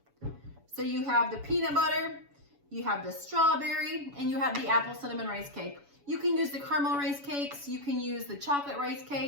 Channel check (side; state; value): left; late; 7.1 ms